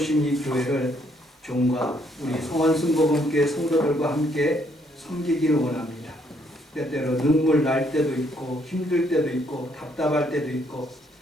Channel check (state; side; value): normal; both; correlation 0.70